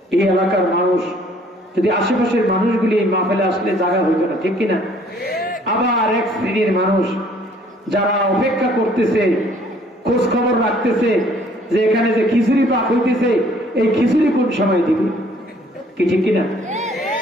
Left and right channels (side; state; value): both; normal; correlation 0.59